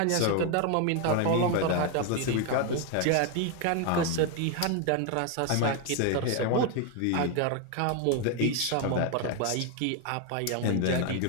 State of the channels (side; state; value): both; different; correlation 0.01